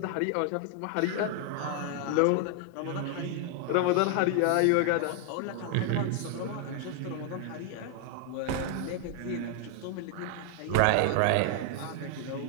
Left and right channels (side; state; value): both; different; correlation 0.00